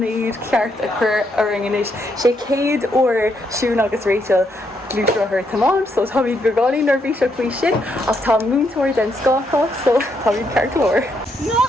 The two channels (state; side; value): normal; both; correlation 0.77